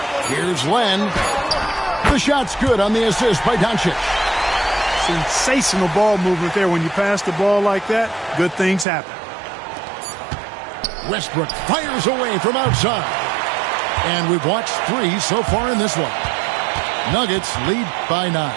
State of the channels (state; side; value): drops out; left; at 8.8 s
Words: Here's Len. The shot's good on the assist by Doncic. Sensational ball movement there. When you pass the ball like that, good things happen. Westbrook fires away from outside. And we've watched 3 so far in this one. Nuggets lead by 9.